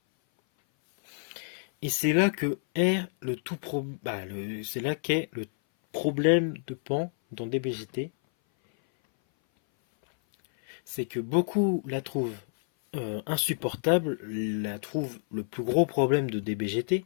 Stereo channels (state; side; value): silent; right; 57 dB below the other